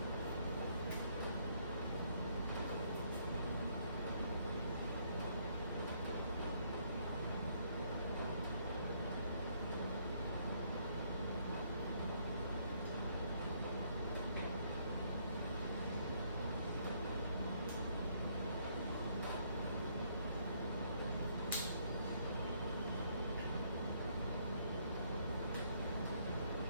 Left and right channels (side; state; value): both; inverted; correlation -0.69